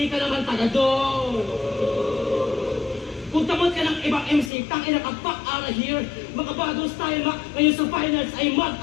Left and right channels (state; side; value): drops out; right; at 4.5 s